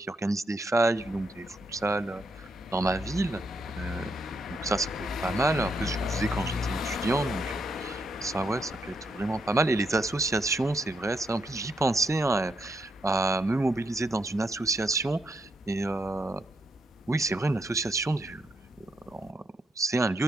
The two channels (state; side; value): normal; both; correlation 0.78